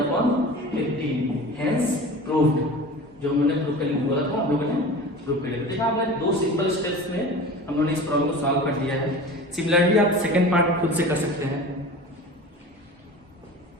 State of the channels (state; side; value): normal; both; correlation 0.36